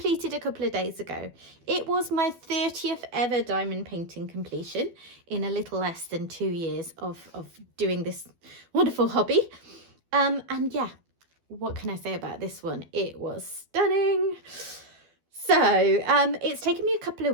a couple of days ago. It was my 30th ever diamond painting completion in a little less than 2 years of doing this wonderful hobby. And yeah, what can I say about this one? It was stunning. So it's taken me a couple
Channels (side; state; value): left; late; 12 ms